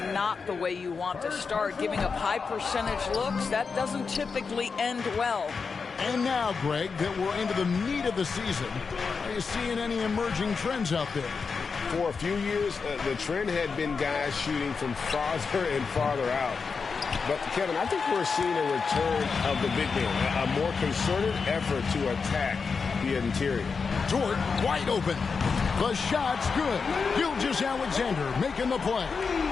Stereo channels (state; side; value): quieter; right; 5.2 dB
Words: the way you want to start. Giving up high percentage looks, that doesn't typically end well. And now, Greg, that we're into the meat of the season, are you seeing any emerging trends out there? For a few years, the trend had been guys shooting from farther and farther out. But, Kevin, I think we're seeing a return of the big man, a more concerted effort to attack the interior. Dort wide open. The shot's good. Gilgeous-Alexander making the play.